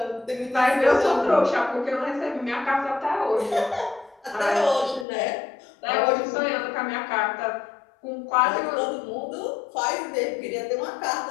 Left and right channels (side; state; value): right; drops out; at 5.1 s